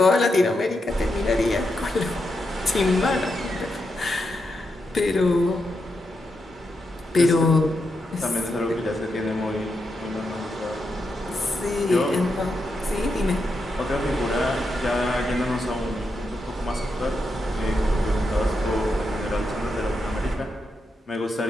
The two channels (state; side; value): normal; both; correlation 0.85